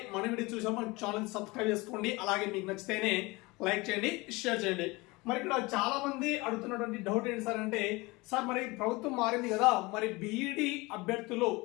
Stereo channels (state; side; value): quieter; right; 23.4 dB